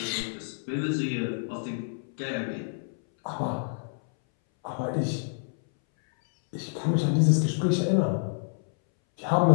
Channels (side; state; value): right; silent; 60 dB below the other